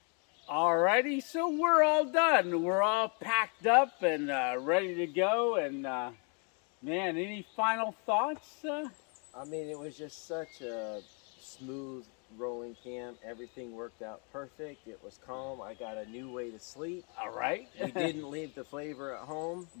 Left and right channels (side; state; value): right; quieter; 37.5 dB